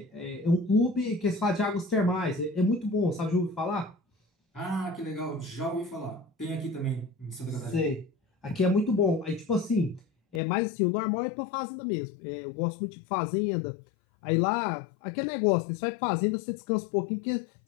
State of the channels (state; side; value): drops out; right; at 10.4 s